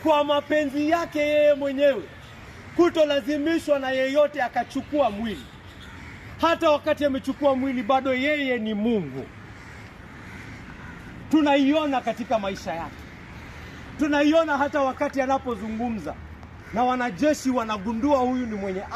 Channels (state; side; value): identical; both; correlation 1.00